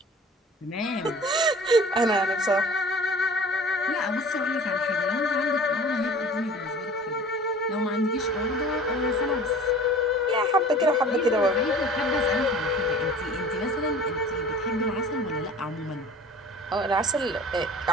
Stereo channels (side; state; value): both; normal; correlation 0.44